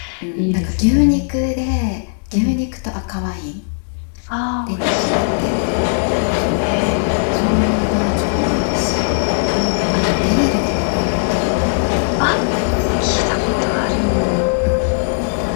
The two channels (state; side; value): silent; right; 68 dB below the other